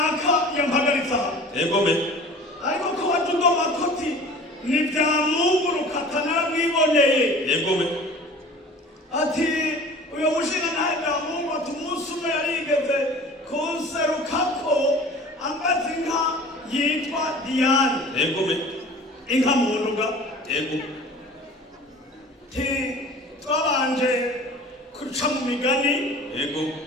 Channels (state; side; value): normal; both; correlation 0.43